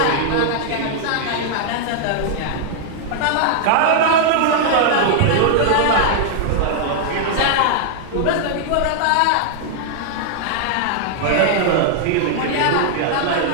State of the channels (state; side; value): different; both; correlation -0.01